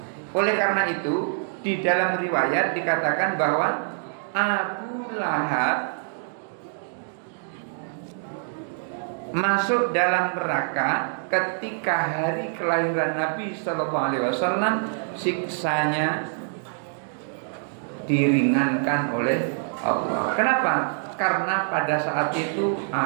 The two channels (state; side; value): silent; left; digital silence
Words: Oleh karena itu, di dalam riwayat dikatakan bahwa Abu Lahab masuk dalam neraka ketika hari kelahiran Nabi Sallallahu Alaihi Wasallam, siksanya diringankan oleh Allah. Kenapa? Karena pada saat itu